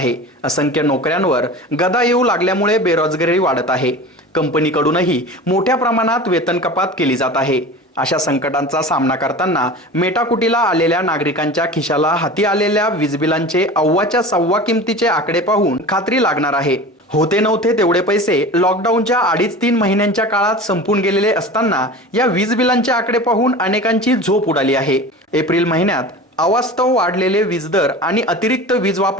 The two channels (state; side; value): normal; both; correlation 0.35